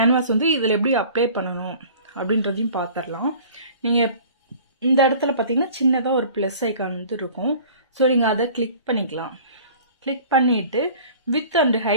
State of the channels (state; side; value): inverted; both; correlation -0.46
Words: வந்து இதில் எப்படி அப்ளை பண்ணணும் அப்படின்றதையும் பார்த்துடலாம். நீங்கள் இந்த இடத்துல பார்த்தீங்கன்னா சின்னதாக ஒரு ப்ளஸ் ஐக்கான் வந்து இருக்கும். ஸோ நீங்கள் அதை கிளிக் பண்ணிக்கலாம். கிளிக் பண்ணிவிட்டு வித் அண்ட்